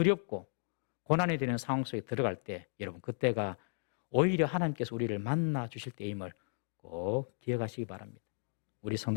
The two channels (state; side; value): silent; right; digital silence